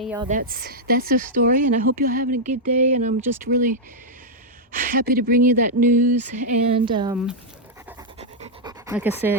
y'all, that's the story, and I hope you're having a good day, and I'm just really happy to bring you that news. And like I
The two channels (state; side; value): normal; both; correlation -0.05